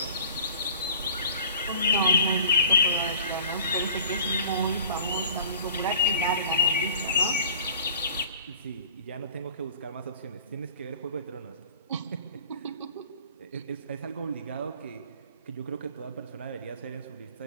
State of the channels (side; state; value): both; inverted; correlation -0.47